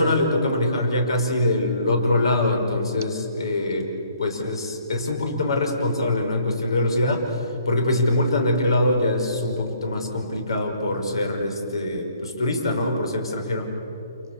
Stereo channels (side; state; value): both; inverted; correlation -0.63